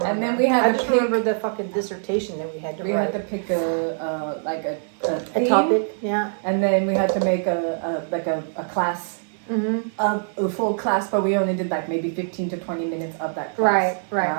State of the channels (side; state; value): left; silent; 63 dB below the other